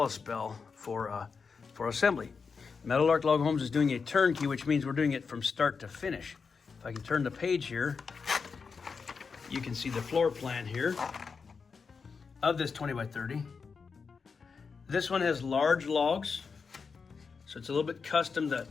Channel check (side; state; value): right; quieter; 5.3 dB